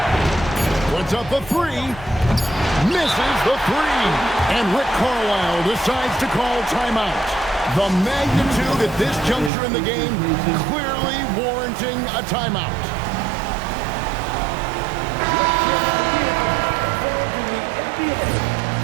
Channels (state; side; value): drops out; left; at 9.5 s